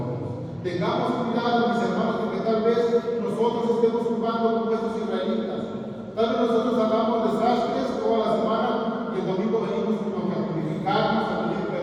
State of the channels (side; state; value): both; identical; correlation 1.00